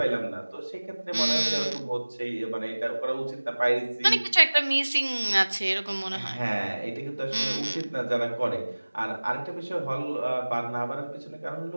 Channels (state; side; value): inverted; both; correlation -1.00